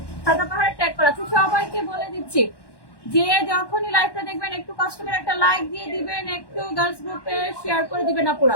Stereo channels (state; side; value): late; right; 1.1 ms